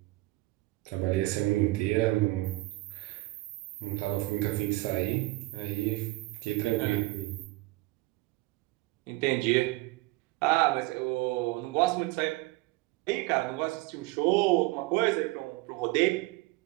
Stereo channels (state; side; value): quieter; left; 20.4 dB